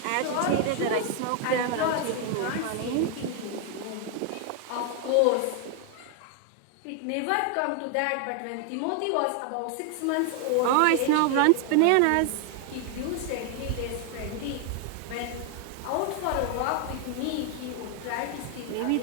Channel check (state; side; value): different; both; correlation 0.00